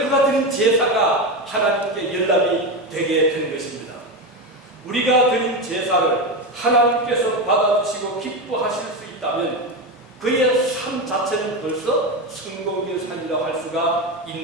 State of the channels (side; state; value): both; normal; correlation 0.16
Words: 그가 드린 제사가 하나님께 연락이 되게 된 것입니다. 우리가 드린 제사를 하나님께서 받아주시고 기뻐하실 수 있다면 그의 삶 자체는 벌써 성공적인 삶이라고 할 수가